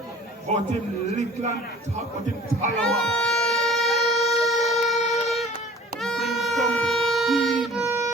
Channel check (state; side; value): normal; both; correlation 0.48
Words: But him little and talk, but him tall.